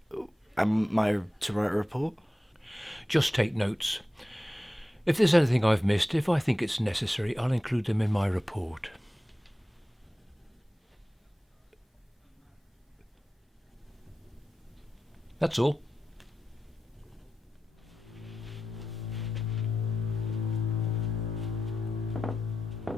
Am I to write a report? Just take notes. If there's anything I've missed, if I think it's necessary, I'll include them in my report. That's all.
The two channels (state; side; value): normal; both; correlation 0.92